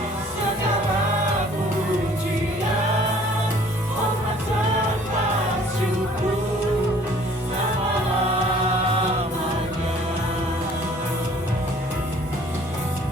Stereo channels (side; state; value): both; normal; correlation 0.55